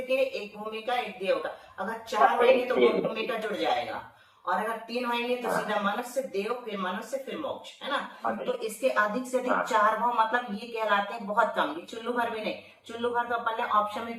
के, 1 भूमि का, 1 देव का। अगर 4 होंगे तो 2 भूमि का जुड़ जाएगा, और अगर 3 होंगे तो सीधा मनुष्य, देव, फिर मनुष्य, फिर मोक्ष, है ना। तो इसके अधिक से अधिक 4 भाव, मतलब ये कहलाते हैं बहुत कम। ये चुल्लू भर भी नहीं, चुल्लू भर तो अपन ने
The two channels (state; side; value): identical; both; correlation 1.00